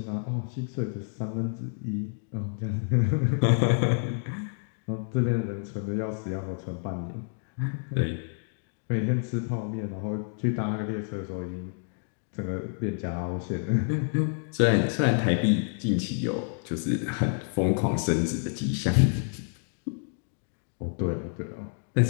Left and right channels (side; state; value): right; silent; 59 dB below the other